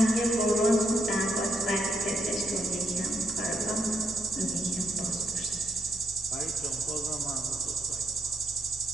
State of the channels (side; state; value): both; normal; correlation 0.77